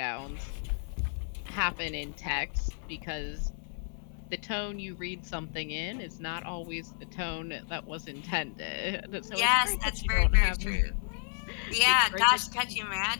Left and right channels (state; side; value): silent; right; 57 dB below the other